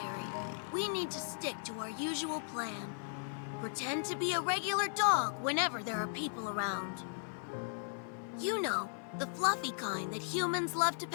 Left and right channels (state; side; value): silent; right; 53 dB below the other